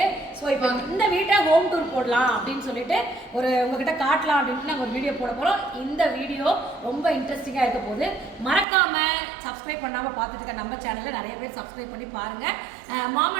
ஸோ இப்போ இந்த வீட்டை ஹோம் டூர் போடலாம் அப்படின்னு சொல்லிட்டு உங்ககிட்ட காட்டலாம் அப்படின்ட்டு நாங்கள் ஒரு வீடியோ போட போகிறோம். இந்த வீடியோ ரொம்ப இன்ட்ரெஸ்டிங்காக இருக்க போது. மறக்காமல் சப்ஸ்கிரைப் பண்ணாமல் பார்த்துட்டு இருக்க நம்ம சேனலை நிறைய பேர் சப்ஸ்கிரைப் பண்ணி பாருங்கள். மாம்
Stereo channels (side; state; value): left; drops out; at 8.7 s